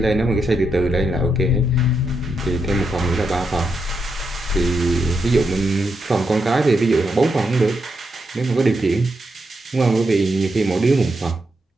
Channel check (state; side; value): normal; both; correlation 0.83